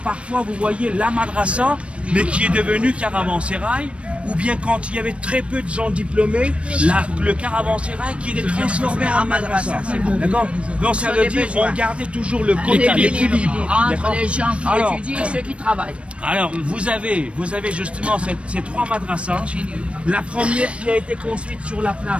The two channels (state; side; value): late; left; 0.060 ms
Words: vous voyez la madrasa mais qui est devenue caravansérail ou bien quand il y avait très peu de gens diplômés, le caravansérail qui est transformé en madrasa. D'accord? Donc ça veut dire qu'on gardait toujours le quota, l'équilibre. Entre les gens qui étudient et ceux qui travaillent. Alors vous avez justement ces 3 madrasas. La première qui a été construite sur la